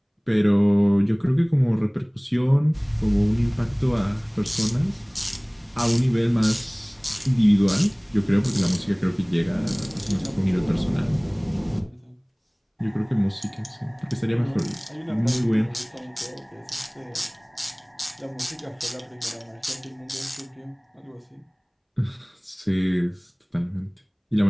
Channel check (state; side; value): identical; both; correlation 1.00